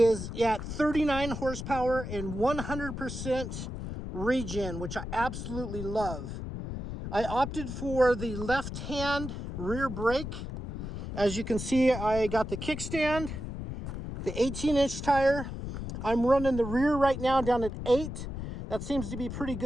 at 39 horsepower and 100% regen, which I absolutely love. I opted for the left-hand rear brake. As you can see, I got the kickstand, the 18-inch tire. I'm running the rear right now down at 8. That seems to be pretty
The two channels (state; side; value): noise; left; rumble, 7 dB below the sound